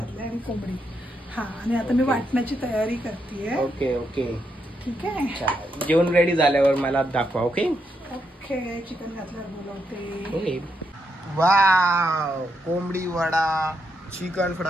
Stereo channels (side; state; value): both; normal; correlation 0.81